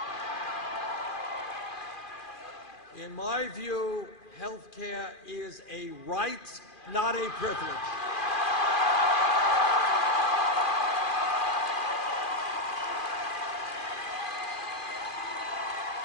In my view, health care is a right, not a privilege.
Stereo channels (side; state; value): right; late; 2.4 ms